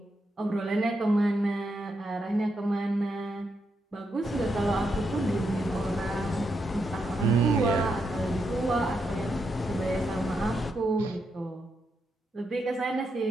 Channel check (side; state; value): both; normal; correlation 0.82